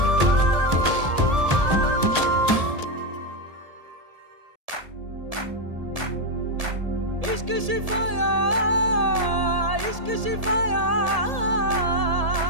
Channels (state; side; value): late; left; 1.7 ms